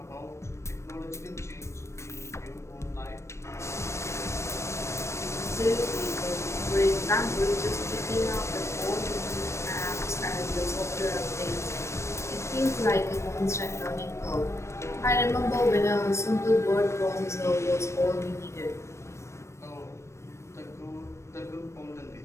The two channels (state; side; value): late; right; 0.13 ms